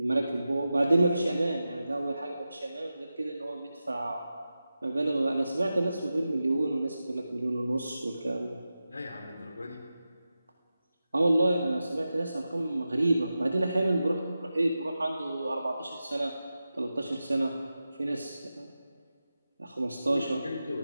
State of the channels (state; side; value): inverted; both; correlation -0.92